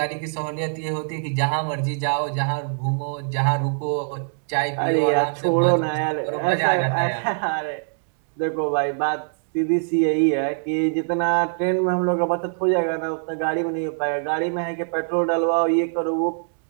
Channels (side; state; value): left; silent; digital silence